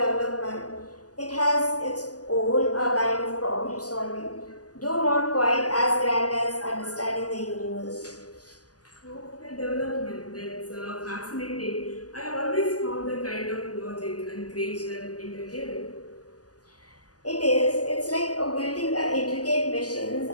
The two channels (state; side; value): late; right; 0.67 ms